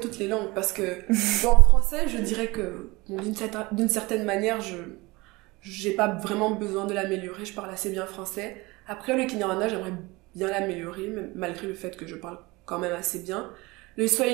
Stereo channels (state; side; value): quieter; left; 23.0 dB